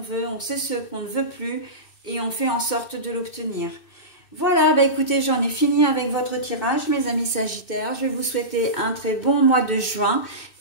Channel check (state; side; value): late; right; 2.6 ms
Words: on sait ce qu'on ne veut plus, et on fait en sorte de l'obtenir. Voilà, bah écoutez, j'en ai fini avec votre tirage, mes amis Sagittaires. Je vais vous souhaiter un très bon mois de juin